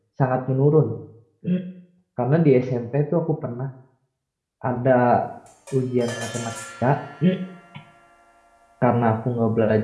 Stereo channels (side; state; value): both; identical; correlation 1.00